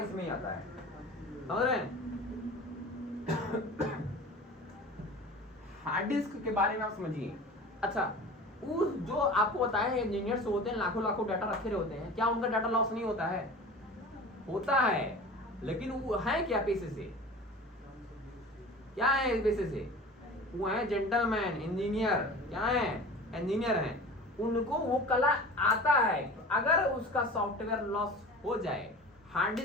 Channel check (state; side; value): normal; both; correlation 0.38